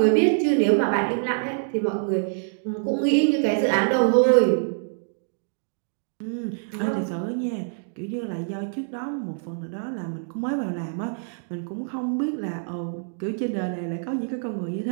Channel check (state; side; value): silent; left; digital silence